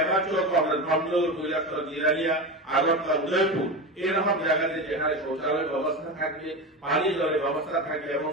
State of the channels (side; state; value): both; normal; correlation 0.22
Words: জব আমরা ধর্মনগর, কৈলাসহর, জিরানিয়া, আগরতলা, উদয়পুর এরকম জায়গাতে যেখানে শৌচালয়ের ব্যবস্থা থাকবে, পানি জলের ব্যবস্থা থাকবে এবং